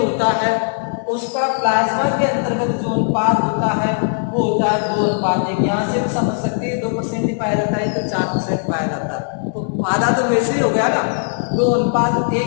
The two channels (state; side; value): silent; right; digital silence